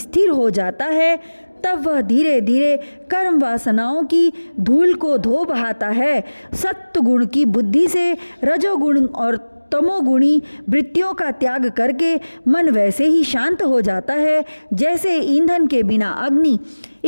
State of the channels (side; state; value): both; inverted; correlation -1.00